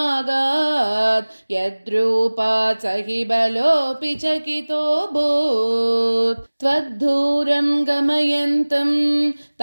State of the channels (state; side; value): inverted; both; correlation -1.00